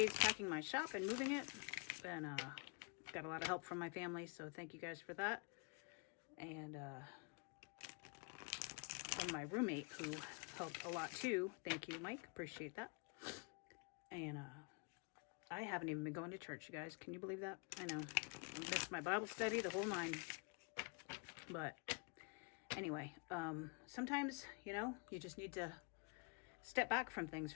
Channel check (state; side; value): quieter; right; 34.2 dB